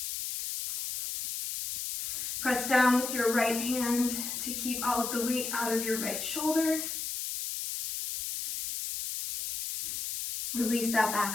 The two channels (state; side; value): noise; left; hiss, 4 dB below the sound